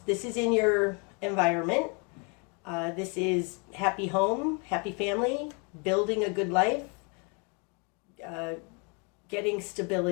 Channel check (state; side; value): quieter; right; 34.1 dB